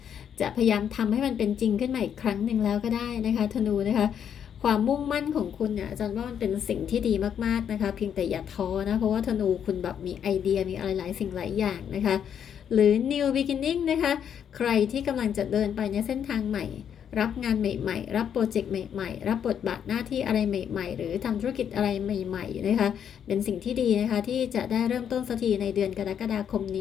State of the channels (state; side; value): quieter; right; 8.5 dB